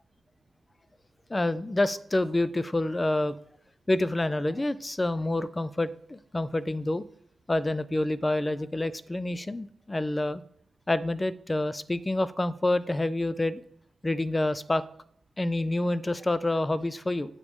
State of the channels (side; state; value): both; normal; correlation 0.98